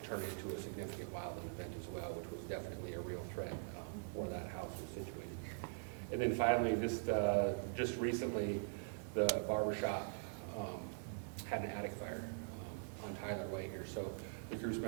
turn into a significant wildland event as well, which was definitely a real threat where that house was situated. And then finally, just recently, the barbershop had an attic fire on Tyler Way here. So the crew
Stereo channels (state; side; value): silent; left; digital silence